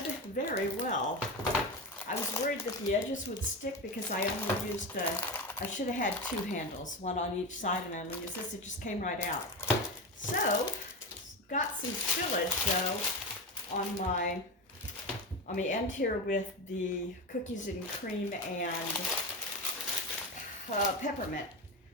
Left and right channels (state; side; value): normal; both; correlation 0.20